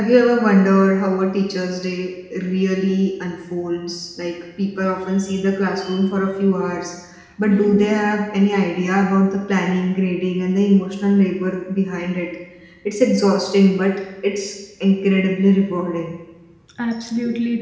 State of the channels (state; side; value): identical; both; correlation 1.00